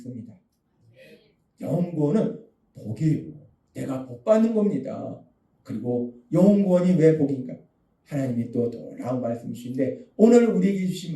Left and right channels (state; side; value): identical; both; correlation 1.00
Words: 영혼권은 복이에요. 내가 복 받는 겁니다. 그리고 영혼권이 왜 복인가? 하나님이 또 놀라운 말씀이신데 오늘 우리에게 주신